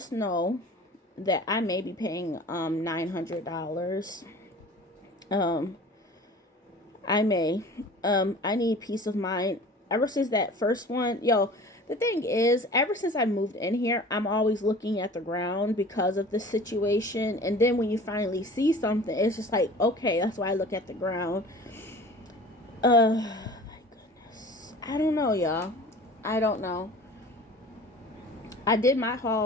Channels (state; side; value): normal; both; correlation 0.42